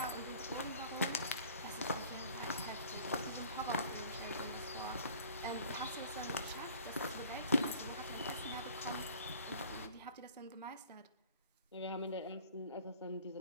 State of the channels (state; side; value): inverted; both; correlation -0.48